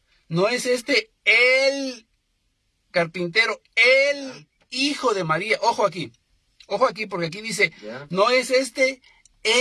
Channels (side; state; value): both; identical; correlation 1.00